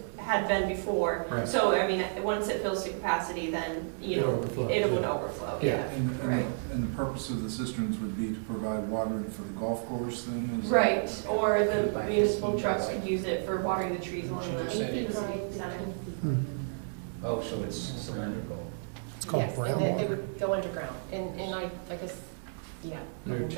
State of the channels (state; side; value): silent; left; digital silence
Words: had been before. Right. So, I mean, once it fills to capacity, then, you know, it would overflow, yeah. Right. And the purpose of the cisterns would be to provide watering for the golf course then? Is that- Right, or the municipal trucks could use it for watering the trees along the Should have city said center. Oh, so it's cylindrical. Yes, and they would go underground, and I guess, yeah, the There are two